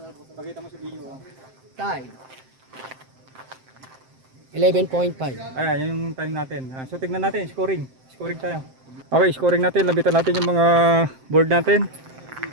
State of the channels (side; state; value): left; late; 7.7 ms